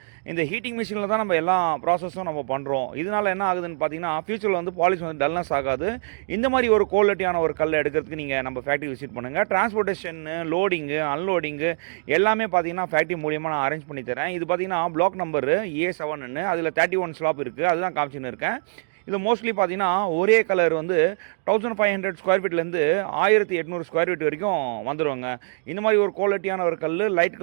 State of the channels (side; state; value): left; silent; digital silence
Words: இந்த ஹீட்டிங் மிஷினில் தான் நம்ம எல்லா ப்ராசஸும் நம்ம பண்ணுறோம். இதனால் என்ன ஆகுதுன்னு பார்த்தீங்கன்னா ஃபியூச்சரில் வந்து பாலிஷ் வந்து டல்னஸ் ஆகாது. இந்த மாதிரி ஒரு குவாலிட்டியான ஒரு கல்லை எடுக்கிறதுக்கு நீங்கள் நம்ம ஃபேக்ட்ரி விசிட் பண்ணுங்கள். டிரான்ஸ்போர்ட்டேஷனு, லோடிங்கு, அன்லோடிங்கு எல்லாமே பார்த்தீங்கன்னா ஃபேக்ட்ரி மூலியமாக நான் அரேஞ்ச் பண்ணி தரேன். இது பார்த்தீங்கன்னா பிளாக் நம்பரு A7ன்னு, அதில் 31 ஸ்லாப் இருக்குது. அதுதான் காமிச்சின்னு இருக்கேன். இது மோஸ்ட்லி பார்த்தீங்கன்னா ஒரே கலர் வந்து 1500 ஸ்கொயர் ஃபீட்லேருந்து 1800 ஸ்கொயர் ஃபீட் வரைக்கும் வந்துடுவாங்க. இந்த மாதிரி ஒரு குவாலிட்டியான ஒரு கல், லைட்